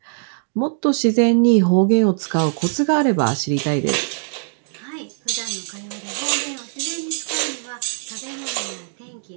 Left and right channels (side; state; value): left; silent; digital silence